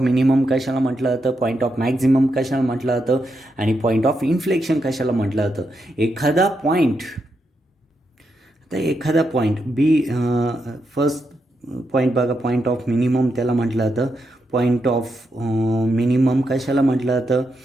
मिनिमम कशाला म्हटलं जातं, पॉईंट ऑफ मॅक्झिमम कशाला म्हटलं जातं, आणि पॉईंट ऑफ इन्फ्लेक्शन कशाला म्हटलं जातं. एखादा पॉईंट बी, फर्स्ट पॉईंट बघा, पॉईंट ऑफ मिनिमम त्याला म्हटलं जातं. पॉईंट ऑफ मिनिमम कशाला म्हटलं जातं,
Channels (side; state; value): both; normal; correlation 0.83